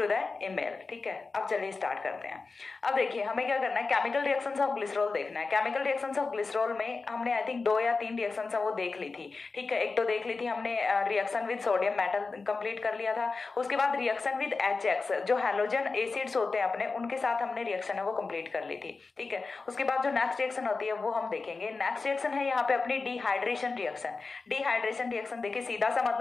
द ईमेल। ठीक है, अब चलिए स्टार्ट करते हैं। अब देखिए, हमें क्या करना है, केमिकल रिएक्शंस ऑफ ग्लिसरॉल देखना है। केमिकल रिएक्शंस ऑफ ग्लिसरॉल में हमने आई थिंक 2 या 3 रिएक्शन वो देख ली थी। ठीक है, एक तो देख ली थी हमने reaction with sodium metal complete कर लिया था। उसके बाद रिएक्शन विद HX, जो हैलोजन एसिड्स होते हैं अपने, उनके साथ हमने रिएक्शन है वो कंप्लीट कर ली थी। ठीक है, उसके बाद जो नेक्स्ट रिएक्शन होती है वो हम देखेंगे। नेक्स्ट रिएक्शन है यहाँ पे अपनी डिहाइड्रेशन रिएक्शन। डिहाइड्रेशन रिएक्शन देखिए, सीधा सा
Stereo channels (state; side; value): quieter; right; 4.1 dB